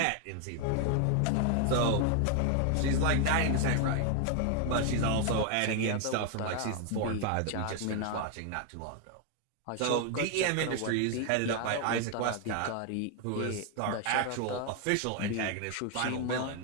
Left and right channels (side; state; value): both; different; correlation 0.01